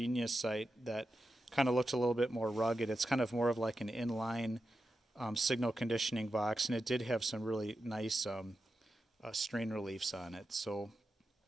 site that kind of looked a little bit more rugged, it's kind of more of like an inline signal conditioning box, and it did have some really nice strain reliefs on it. So,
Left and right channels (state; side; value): normal; both; correlation 0.90